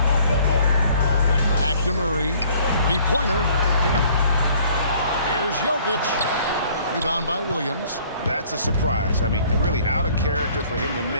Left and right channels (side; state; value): both; inverted; correlation -0.57